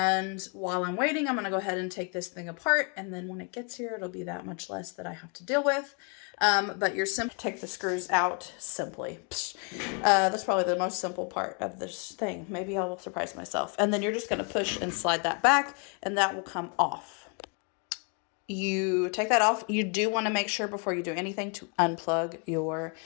while I'm waiting, I'm going to go ahead and take this thing apart. And then when it gets here, it'll be that much less that I have to deal with. But you're simply take the screws out simply. That's probably the most simple part of this thing. Maybe I will surprise myself. And then you're just going to push and slide that back and that will come off. You take that off. You do want to make sure before you do anything to unplug your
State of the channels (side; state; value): right; quieter; 36.5 dB